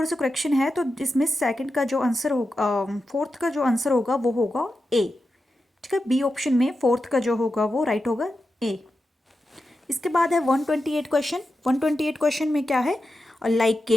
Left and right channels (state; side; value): normal; both; correlation 0.90